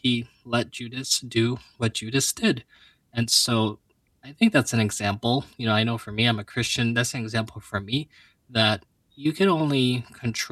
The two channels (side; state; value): both; identical; correlation 1.00